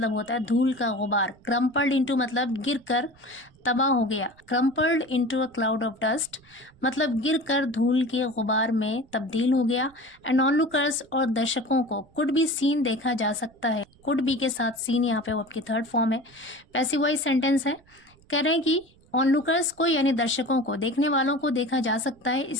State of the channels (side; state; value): right; noise; rumble, 29 dB below the sound